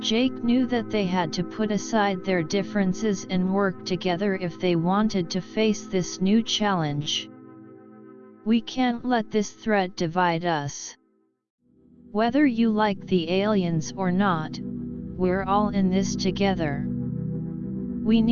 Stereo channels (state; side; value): identical; both; correlation 1.00